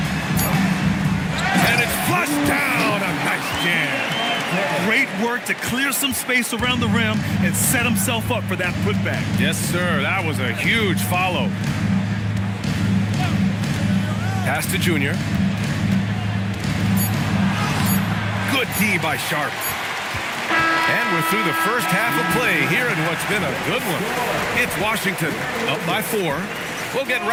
And it's flushed down. A nice jam. Great work to clear some space around the rim and set himself up for that putback. Yes, sir. That was a huge follow. Pass to Junior. Good D by Sharp. And we're through the first half of play here in what's been a good one. It's Washington up by 4. We'll get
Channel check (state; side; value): identical; both; correlation 1.00